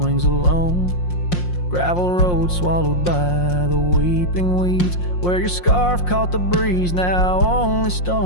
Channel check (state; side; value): late; right; 5.6 ms